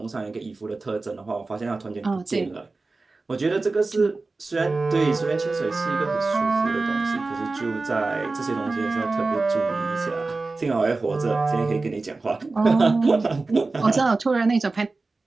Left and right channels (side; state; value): left; quieter; 3.6 dB